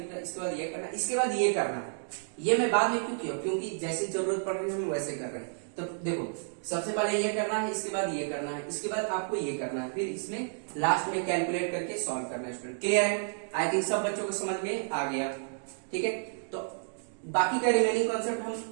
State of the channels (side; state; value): left; silent; digital silence